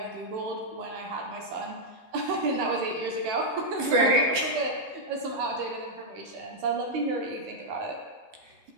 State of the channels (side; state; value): left; late; 14 ms